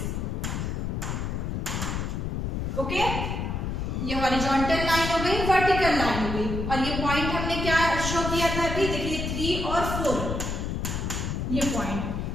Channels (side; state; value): left; noise; rumble, 2 dB below the sound